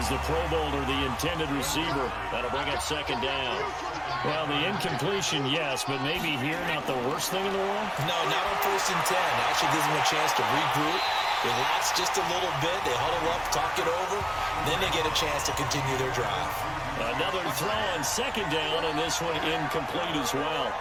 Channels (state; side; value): identical; both; correlation 1.00